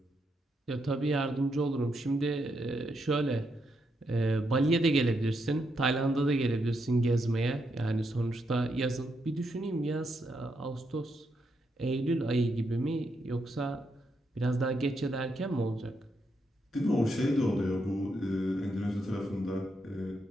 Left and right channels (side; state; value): both; normal; correlation 0.80